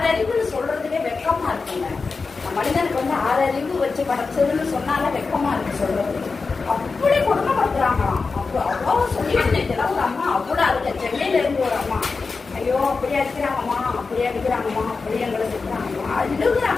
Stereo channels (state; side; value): quieter; right; 4.4 dB